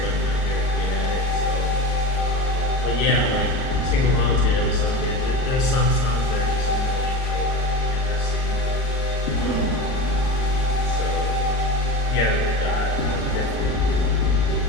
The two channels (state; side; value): late; right; 39 ms